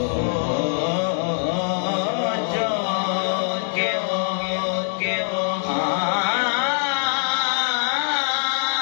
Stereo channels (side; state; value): right; silent; digital silence